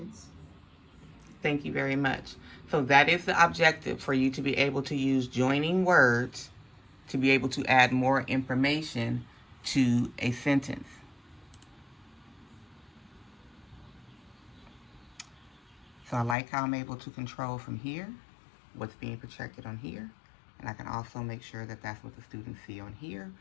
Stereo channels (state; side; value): drops out; right; at 16.4 s